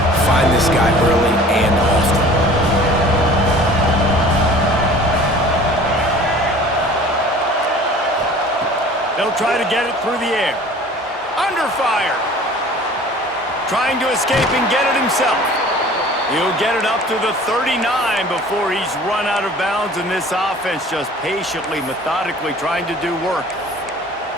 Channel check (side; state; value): both; normal; correlation 0.46